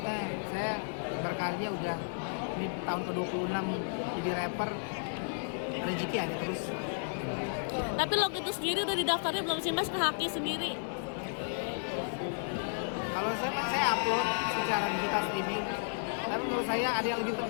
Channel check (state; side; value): silent; right; 56 dB below the other